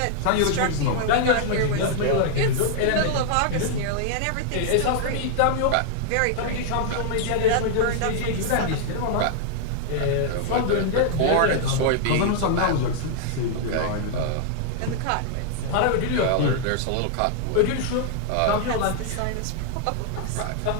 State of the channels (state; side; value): different; both; correlation -0.01